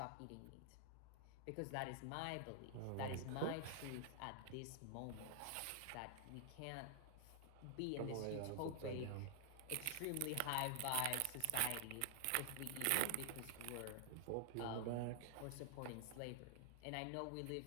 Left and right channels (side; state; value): both; different; correlation -0.01